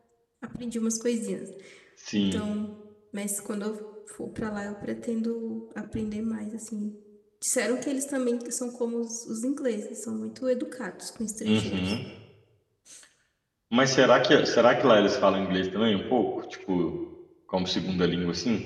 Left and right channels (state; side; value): identical; both; correlation 1.00